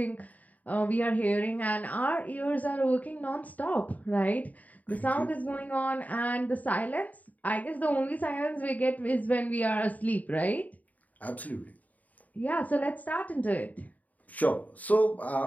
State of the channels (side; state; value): right; late; 0.074 ms